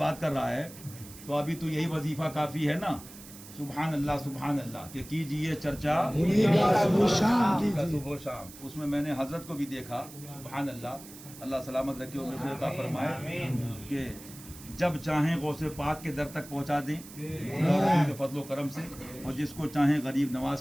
کر رہا ہے، تو ابھی تو یہی وظیفہ کافی ہے نا. سبحان اللہ کہ کیجئے چرچا انہیں کا صبح شام کیجئے. صبح و شام. اس میں میں نے حضرت کو بھی دیکھا، سبحان اللہ سلامت رکھے اور مغفرت عطا فرمائے، کہ جب چاہیں غوث پاک کے در تک پہنچا دیں اللہ کے فضل و کرم سے، اور جس کو چاہیں غریب نواز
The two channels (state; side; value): noise; right; hiss, 17 dB below the sound